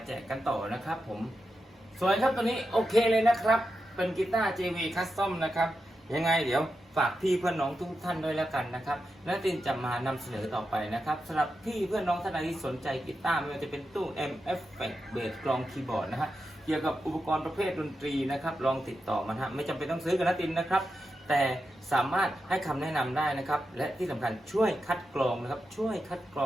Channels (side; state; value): both; normal; correlation 0.88